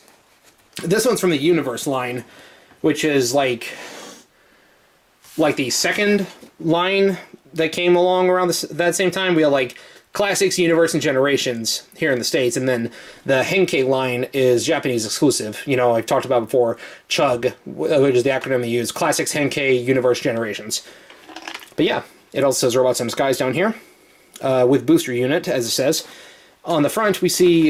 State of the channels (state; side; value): identical; both; correlation 1.00